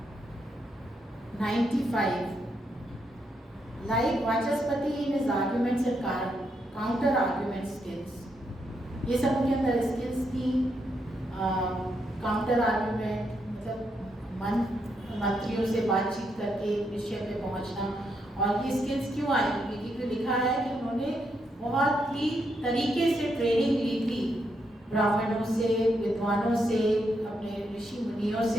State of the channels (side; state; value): both; normal; correlation 0.79